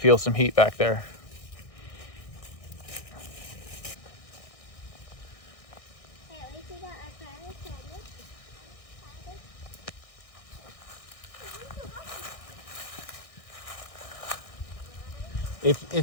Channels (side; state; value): right; late; 1.6 ms